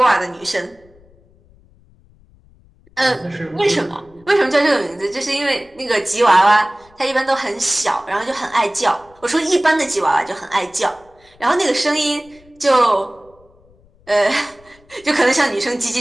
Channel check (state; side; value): noise; left; rumble, 29 dB below the sound